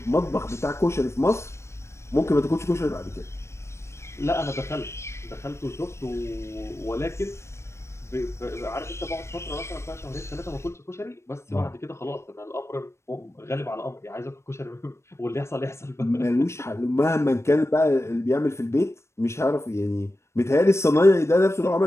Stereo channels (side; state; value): right; late; 0.13 ms